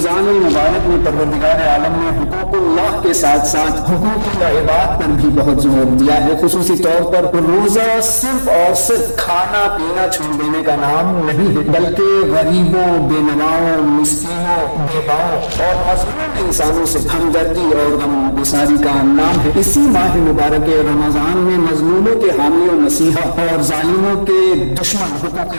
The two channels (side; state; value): both; inverted; correlation -1.00